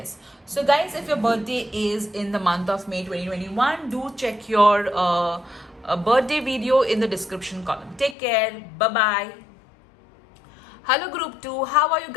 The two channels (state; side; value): drops out; right; at 8.2 s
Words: So guys, if your birthday is in the month of May 2021, do check your birthday video in the description column. Take care. Bye-bye. Hello group 2, how are you